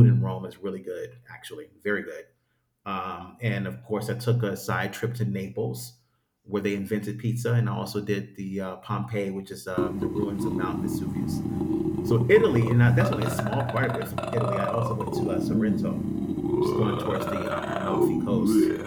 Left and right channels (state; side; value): identical; both; correlation 1.00